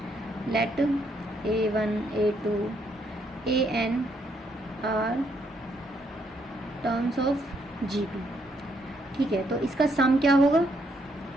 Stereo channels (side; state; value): both; normal; correlation 0.73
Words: let A1 A2 AN are terms of GP, ठीक है, तो इसका सम क्या होगा,